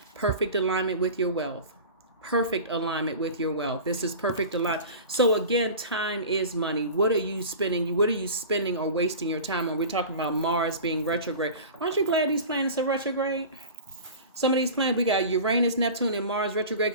Perfect alignment with your wealth. Perfect alignment with your wealth. This is perfect alignment. So again, time is money. What are you spending? What are you spending or wasting your time on? We're talking about Mars being retrograde. Aren't you glad these planets are retrograde? Some of these planets, we got Uranus, Neptune, and Mars retrograde,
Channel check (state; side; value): inverted; both; correlation -0.35